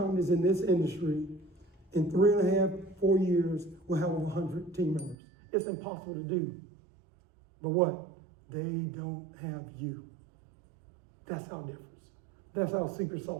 in this industry in 3.5, 4 years will have over 100 team members? It's impossible to do. But what? They don't have you. That's our difference. That's our secret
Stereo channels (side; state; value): left; drops out; at 5.2 s